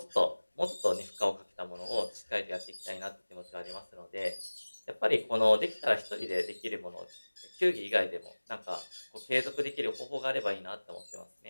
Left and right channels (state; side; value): inverted; both; correlation -1.00